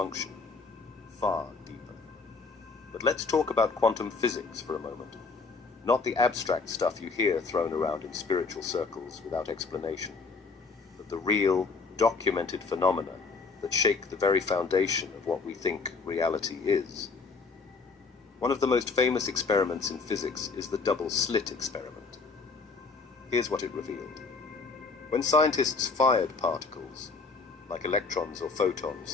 Far deeper. But let's talk about quantum physics for a moment. Not the abstract stuff you hear thrown around in spiritual circles without explanation, but the real, documented phenomena that shake the very foundation of what we think reality is. One of the most famous experiments in physics is the double-slit experiment. Here's what it revealed. When scientists fired particles, like electrons or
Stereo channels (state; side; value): quieter; right; 4.4 dB